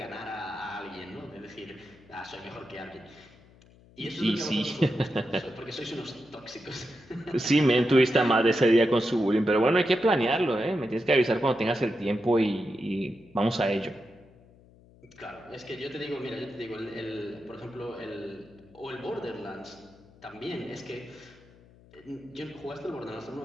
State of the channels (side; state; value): left; noise; hum, 26 dB below the sound